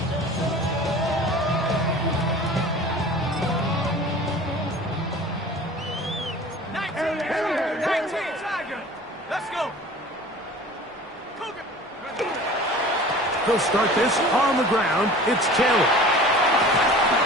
They'll start this on the ground. It's Taylor.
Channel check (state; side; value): normal; both; correlation 0.42